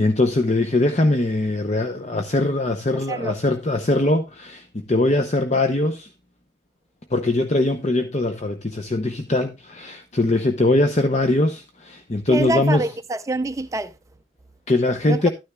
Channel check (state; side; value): normal; both; correlation 0.65